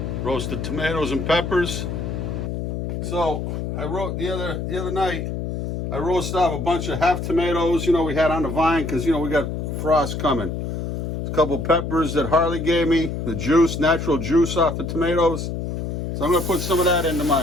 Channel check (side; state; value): left; noise; hum, 4 dB below the sound